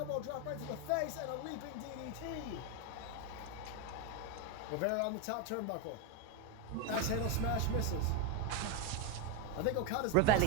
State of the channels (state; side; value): different; both; correlation 0.03